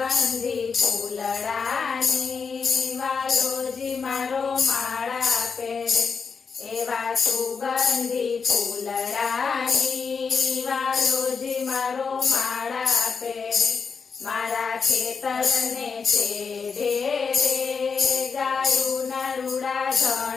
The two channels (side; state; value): right; quieter; 5.5 dB